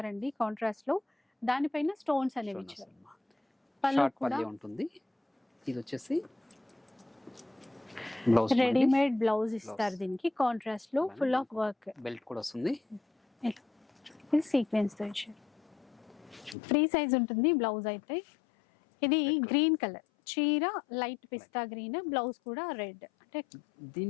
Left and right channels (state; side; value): drops out; right; at 16.6 s